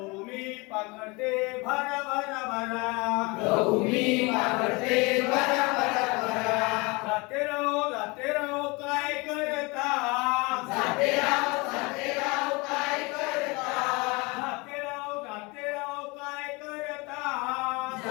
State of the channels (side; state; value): right; quieter; 26.5 dB